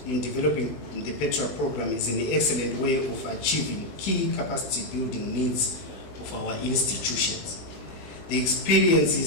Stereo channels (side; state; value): right; late; 21 ms